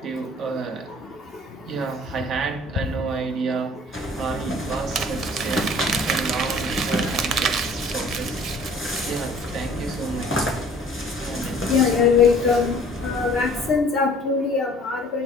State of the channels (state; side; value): normal; both; correlation 0.52